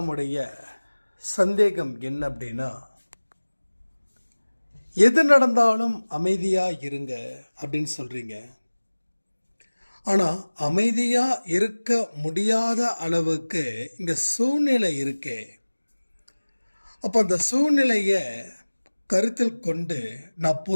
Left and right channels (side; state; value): both; inverted; correlation -1.00